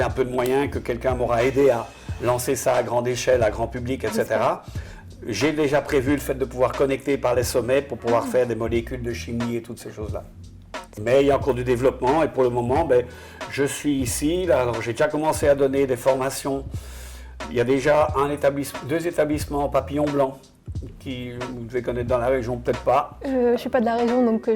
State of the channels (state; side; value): identical; both; correlation 1.00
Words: un peu de moyens, que quelqu'un m'aura aidé à lancer ça à grande échelle, à grand public, etc., j'ai déjà prévu le fait de pouvoir connecter par les sommets pour pouvoir faire des molécules de chimie et toutes ces choses-là. Mais il y a encore du développement et pour le moment, je suis ici. Là, alors, j'ai déjà commencé à donner des formations Il y a déjà deux établissements papillon blanc qui vous devez connaître dans la région, peut-être pas. Je ne suis pas de la région, donc